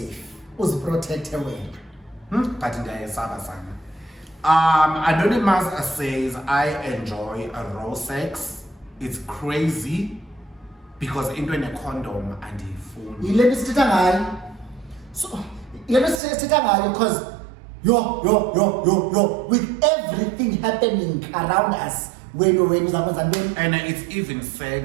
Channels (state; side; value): drops out; left; at 16.2 s